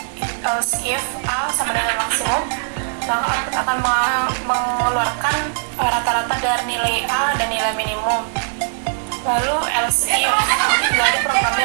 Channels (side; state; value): left; silent; digital silence